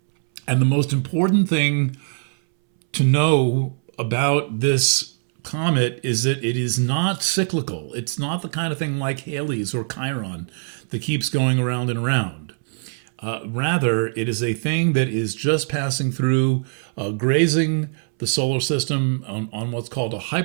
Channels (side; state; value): left; silent; 64 dB below the other